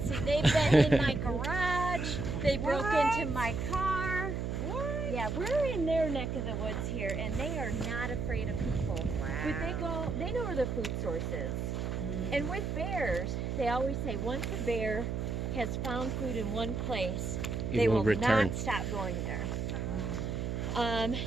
see, they've been in my garage. They broke What? into my car. What? Yeah, we're in their neck of the woods here, and they are not afraid of people. But they know where their food source is. And with bears, they always say once a bear has found food in one place, they will return. not stop going there.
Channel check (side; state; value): right; noise; hum, 2 dB below the sound